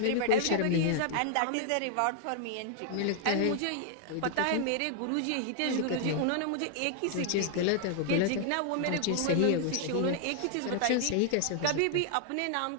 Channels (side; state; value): both; different; correlation 0.00